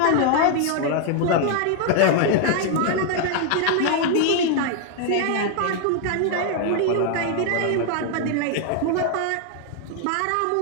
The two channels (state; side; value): different; both; correlation 0.00